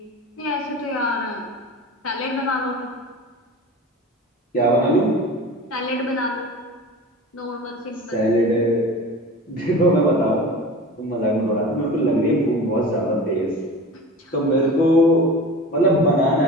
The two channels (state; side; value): normal; both; correlation 0.35